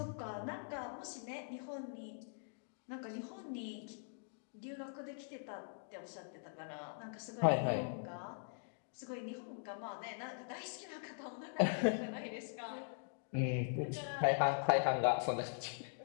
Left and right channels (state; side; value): silent; right; digital silence